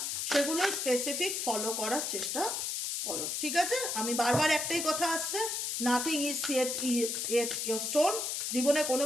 সেগুলো স্পেসিফিক ফলো করার চেষ্টা করো, ঠিক আছে? আমি বারবার একটাই কথা আসছে, nothing is set your stone, জীবনে কোনো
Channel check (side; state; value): left; noise; hiss, 1 dB below the sound